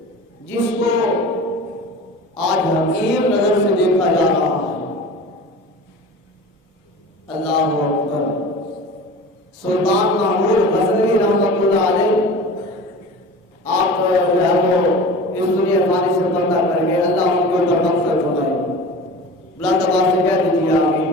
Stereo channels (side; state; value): both; normal; correlation 0.36